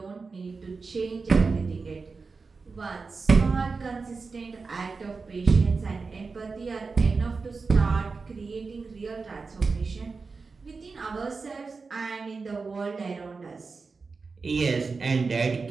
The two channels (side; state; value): left; quieter; 4.4 dB